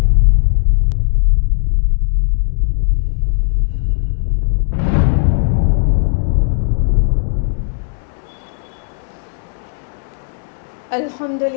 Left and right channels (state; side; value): silent; right; digital silence